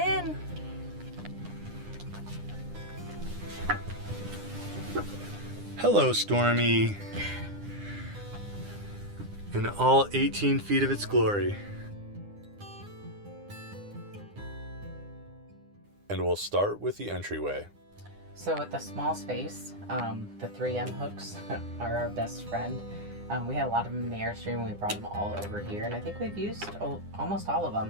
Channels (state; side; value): late; left; 9.8 ms